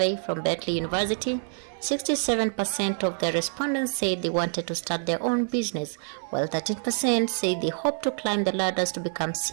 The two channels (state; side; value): silent; left; 58 dB below the other